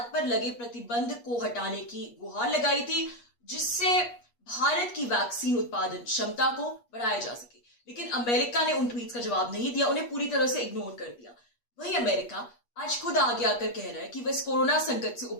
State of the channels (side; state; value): right; late; 8.4 ms